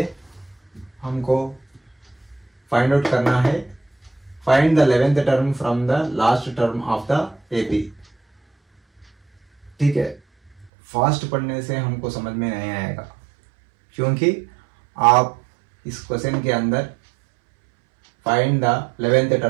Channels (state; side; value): drops out; left; at 10.7 s